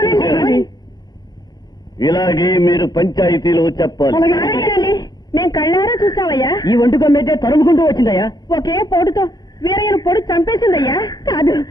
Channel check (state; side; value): late; right; 0.20 ms